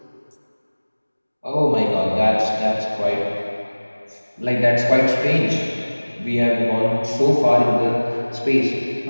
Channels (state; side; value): inverted; both; correlation -1.00